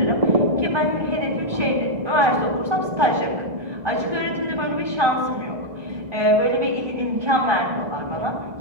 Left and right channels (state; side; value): late; left; 1.3 ms